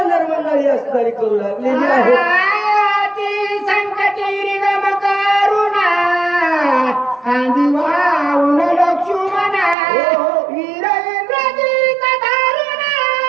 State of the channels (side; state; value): left; drops out; at 9.8 s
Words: मंडळी असणारी करू लागलेली आहे. संकटी गम करुणा वाऊन लक्ष्मणा वीरेंद्रजित धारुणा